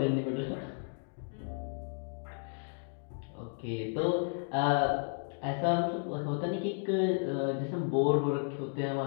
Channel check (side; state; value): right; silent; 55 dB below the other